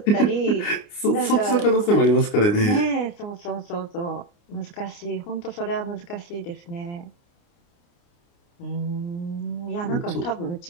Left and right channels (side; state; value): right; late; 29 ms